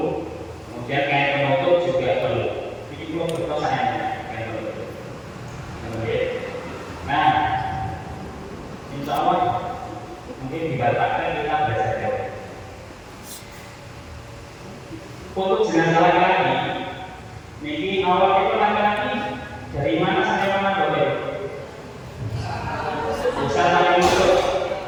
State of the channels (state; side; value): identical; both; correlation 1.00